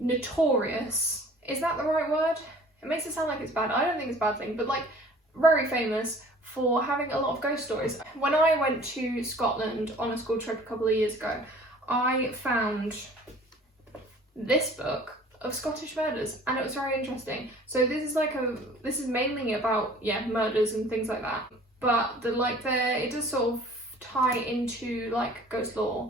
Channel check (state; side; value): normal; both; correlation 0.49